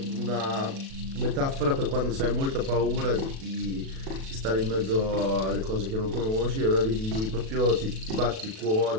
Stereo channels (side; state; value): left; late; 37 ms